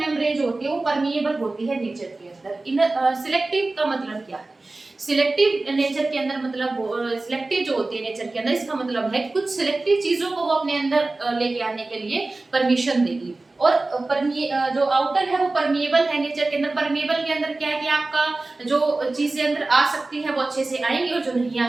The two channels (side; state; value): left; quieter; 3.2 dB